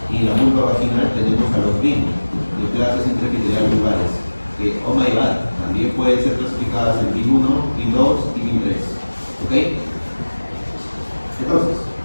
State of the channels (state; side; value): inverted; both; correlation -1.00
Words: Y en la vulva vaginal tenemos a los BIN, neoplasias intraepiteliales vulvares, que, oh my god, también pueden ser clasificadas en BIN 1, BIN 2 y BIN 3. ¿Ok? Entonces,